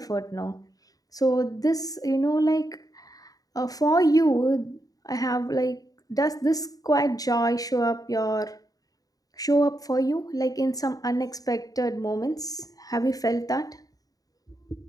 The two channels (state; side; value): late; right; 0.18 ms